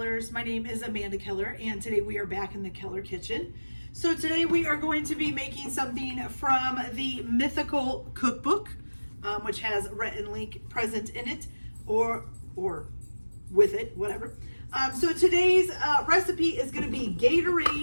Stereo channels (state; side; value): inverted; both; correlation -1.00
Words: My name is Amanda Keller, and today we are back in the Keller kitchen. So today we are going to be making something from the Mythical Cookbook, which has Rhett and Link present in it, or with it, whatever. So today's recipe is going to be